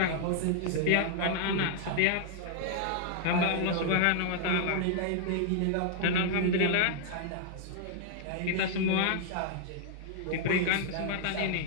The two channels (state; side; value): different; both; correlation -0.01